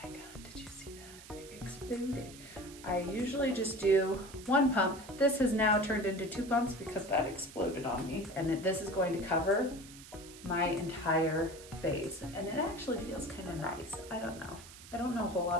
my God, did you see that? It exploded. I usually just do one pump. This has now turned into 2 pumps because that exploded on me. And this is going to cover my entire face. And it actually feels kind of nice. I don't know. I don't know a whole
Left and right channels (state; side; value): noise; right; hiss, 17 dB below the sound